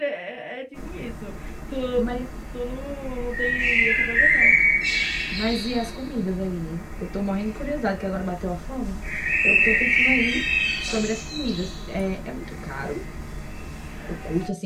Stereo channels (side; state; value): both; identical; correlation 1.00